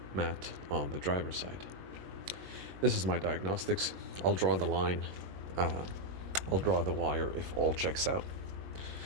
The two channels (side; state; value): left; late; 21 ms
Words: mat on the driver's side. This is my diagnostics. I'll draw the line. I'll draw the wire if all checks out.